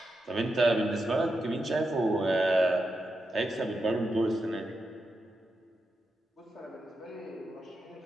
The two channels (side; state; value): both; normal; correlation 0.87